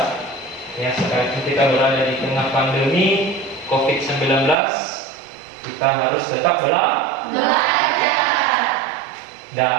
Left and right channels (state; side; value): drops out; left; at 4.5 s